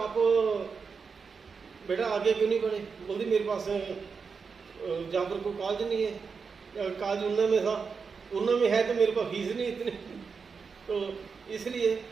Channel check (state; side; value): quieter; left; 5.4 dB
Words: बेटा आगे क्यों नहीं बढ़े। बोलती मेरे पास जहाँ पर कोई कॉलेज नहीं है, कॉलेज उन्ना में था, उन्ना में है तो मेरे पास फीस नहीं इतनी। तो इसलिए